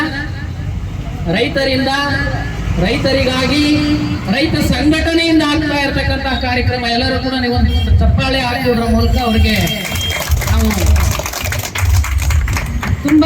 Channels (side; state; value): both; identical; correlation 1.00